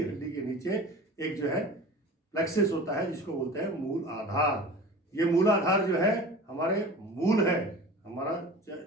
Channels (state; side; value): normal; both; correlation 0.38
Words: हड्डी के नीचे एक जो है प्लेक्सिस होता है, जिसको बोलते हैं मूल आधार। ये मूल आधार जो है हमारे मूल है, हमारा